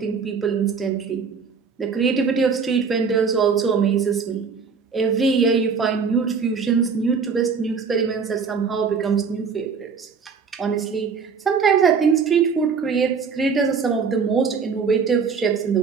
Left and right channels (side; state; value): left; quieter; 5.6 dB